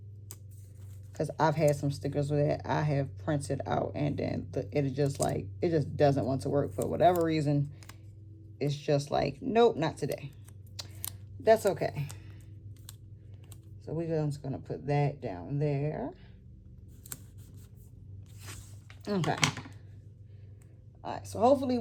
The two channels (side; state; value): both; identical; correlation 1.00